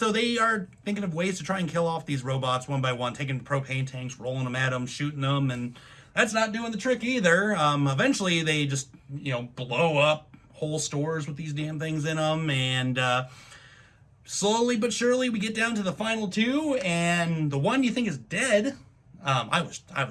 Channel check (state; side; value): identical; both; correlation 1.00